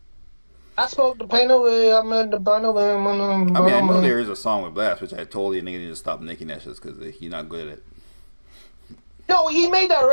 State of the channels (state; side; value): inverted; both; correlation -1.00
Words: I spoke the pain away, I'm in the bun away. I mean, I know there is a song with Blast, which I told you nigga need to stop making that shit because he's not good at it. No, he made that